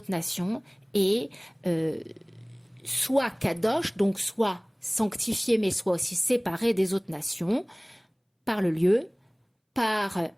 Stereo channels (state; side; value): identical; both; correlation 1.00